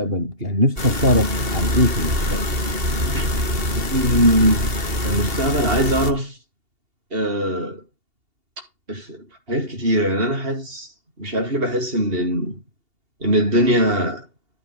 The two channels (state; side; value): late; left; 2.8 ms